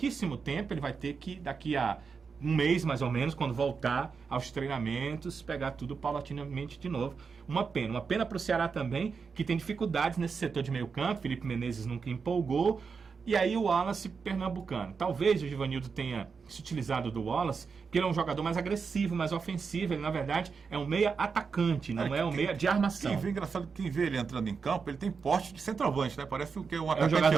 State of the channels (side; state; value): left; quieter; 5.4 dB